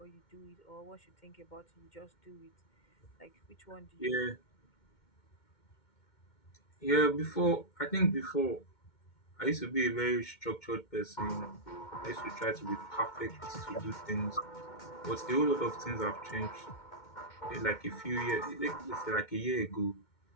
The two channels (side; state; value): right; late; 2.1 ms